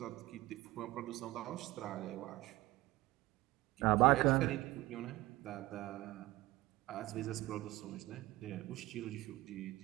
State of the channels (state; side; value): quieter; left; 18.7 dB